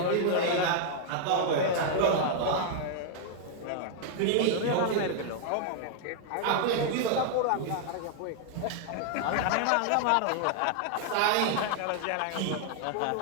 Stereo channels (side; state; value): both; different; correlation 0.00